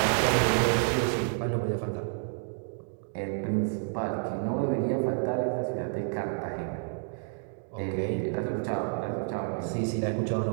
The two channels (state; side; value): silent; left; digital silence